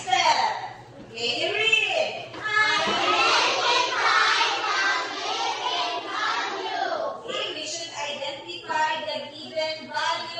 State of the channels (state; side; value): identical; both; correlation 1.00